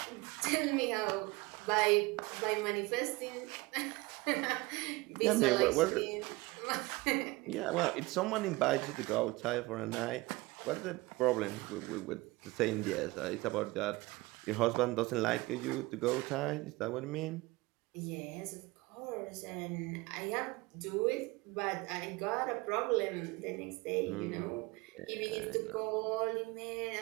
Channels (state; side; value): quieter; left; 22.3 dB